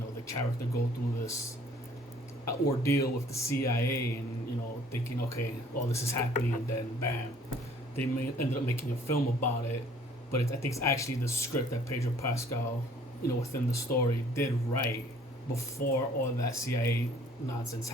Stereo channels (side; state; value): both; normal; correlation 0.56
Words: the character go through this ordeal with the CIA, and thinking, okay, all this is happening, and then bam, they ended up making a film about it. But I think it's actually the script that Pedro Pascal, within the story, did write before all that CIA nonsense